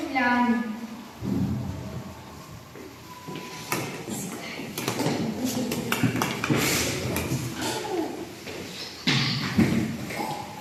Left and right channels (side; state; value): both; identical; correlation 1.00